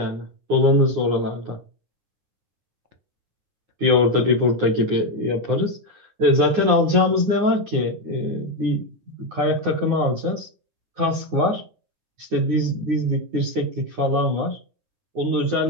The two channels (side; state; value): left; late; 9.6 ms